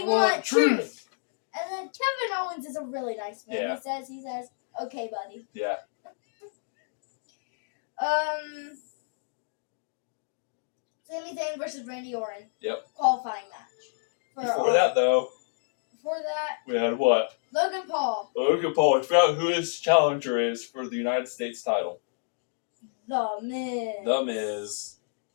want truth. truth. And then Kevin Owens is a really nice man. Yeah. He says, okay, buddy. Yeah. Sami Zayn versus Randy Orton. Yep. Qualifying match. Before that, we had what? Logan Paul. Logan Paul. I forgot who his challenger is for the United States title. The Miz. The Miz.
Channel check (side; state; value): right; silent; digital silence